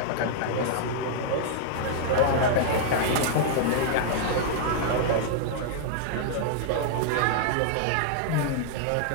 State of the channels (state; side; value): different; both; correlation -0.01